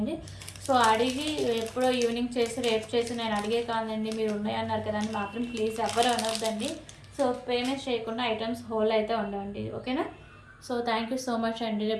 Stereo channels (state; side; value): identical; both; correlation 1.00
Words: సో అడిగి ఎప్పుడో ఈవినింగ్ చేసి రేపు చేసి నేను అడిగే కాదండి మీరు ఉన్నాయన్నారు కదా అని మాత్రం ప్లీజ్ ఎవరు అనొద్దండి. సో పేమెంట్ చేయకుండా ఐటమ్స్ హోల్ అయితే ఉండండి. ఓకేనా. So thank you so much అండి.